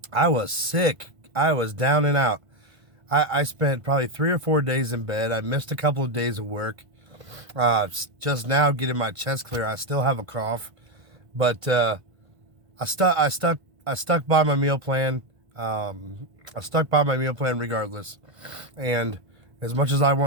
I was sick. I was down and out. I spent probably 3 or 4 days in bed. I missed a couple of days of work. Just now getting my chest clear. I still have a cough, but I stuck by my meal plan. I stuck by my meal plan regardless. And as much as I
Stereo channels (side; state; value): left; late; 1.5 ms